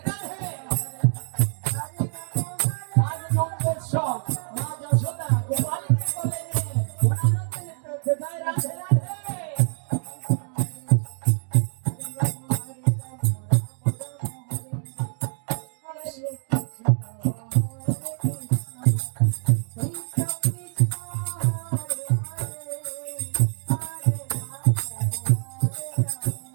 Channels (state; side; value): silent; left; digital silence